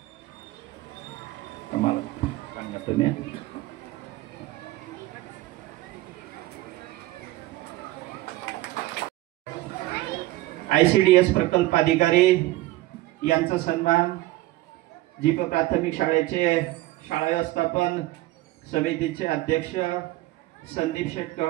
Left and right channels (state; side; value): quieter; left; 17.6 dB